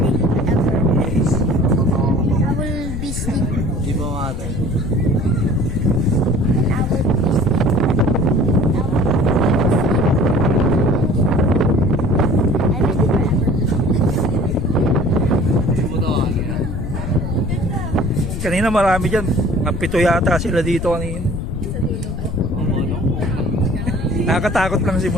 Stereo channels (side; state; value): left; noise; rumble, 5 dB below the sound